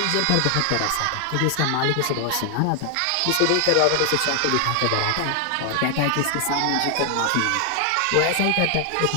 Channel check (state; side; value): different; both; correlation 0.00